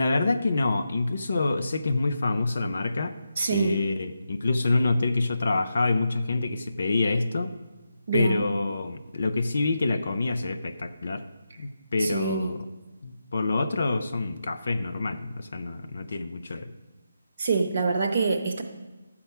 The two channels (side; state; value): both; inverted; correlation -0.86